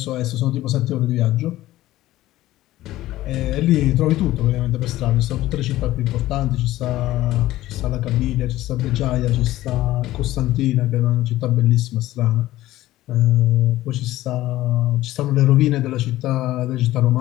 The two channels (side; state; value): right; quieter; 15.7 dB